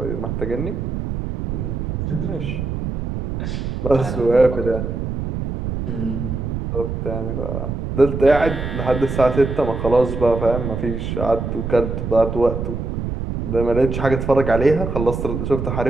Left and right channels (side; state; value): right; noise; rumble, 4 dB below the sound